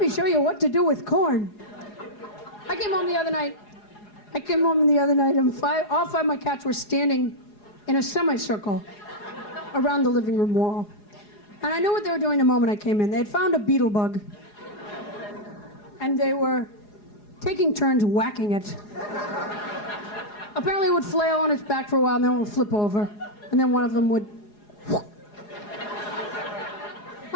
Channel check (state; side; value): late; right; 4.8 ms